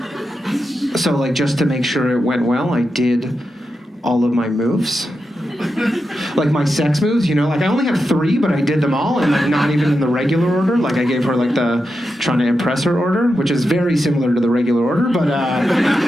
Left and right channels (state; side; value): normal; both; correlation 0.88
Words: So, like, just to make sure it went well, I did all of my moves. Like my sex moves, you know, like I only have 3, but I did them all, and like not even in the regular order. Like I gave her like the trying to impress her order, which is very similar to the regular order, but